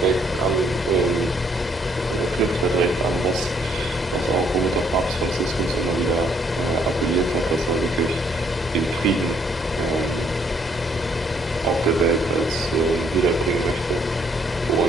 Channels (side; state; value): both; normal; correlation 0.68